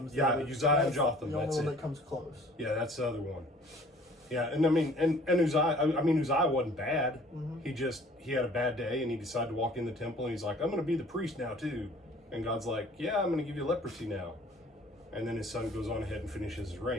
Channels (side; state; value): both; normal; correlation 0.52